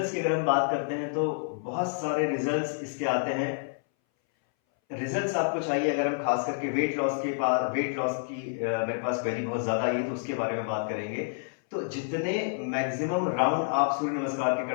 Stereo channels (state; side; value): silent; right; 59 dB below the other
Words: की अगर हम बात करते हैं तो बहुत सारे रिजल्ट्स इसके आते हैं। रिजल्ट्स आपको चाहिए, अगर हम खास करके वेट लॉस की मेरे पास क्वेरी बहुत ज्यादा आई है तो उसके बारे में बात करेंगे। तो जितने मैक्सिमम राउंड आप सूर्य नमस्कार के